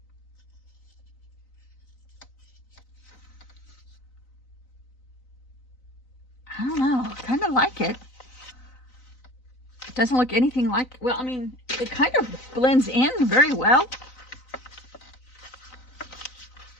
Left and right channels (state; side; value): late; right; 3.9 ms